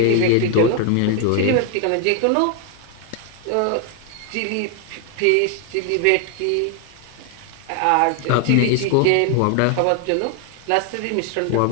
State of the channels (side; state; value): both; different; correlation 0.00